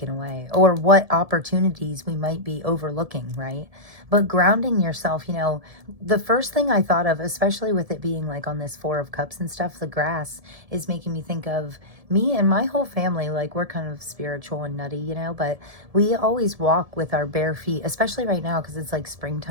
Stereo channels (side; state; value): left; late; 1.7 ms